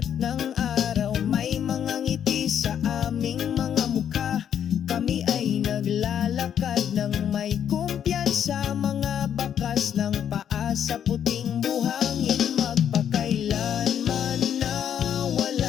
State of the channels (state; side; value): quieter; right; 9.1 dB